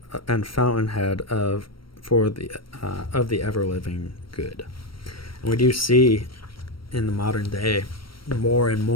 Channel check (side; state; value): right; late; 0.74 ms